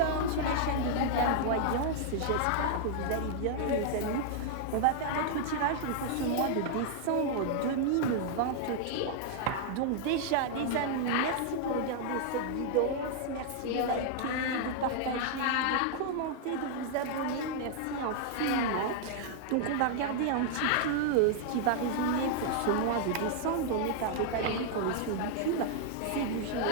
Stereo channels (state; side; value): different; both; correlation -0.01